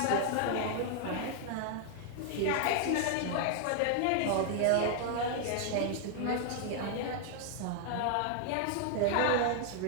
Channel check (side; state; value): both; different; correlation 0.00